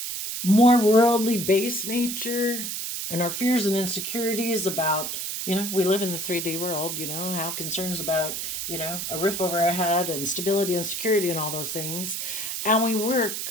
more worldly based nature, and our fears and insecurities about, you know, we live in the 3D world, you know, have concerns about, you know, a roof over our head and stability and security and all those things. And we work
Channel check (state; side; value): noise; right; hiss, 4 dB below the sound